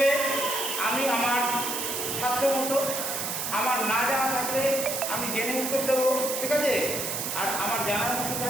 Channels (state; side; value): noise; right; hiss, 2 dB below the sound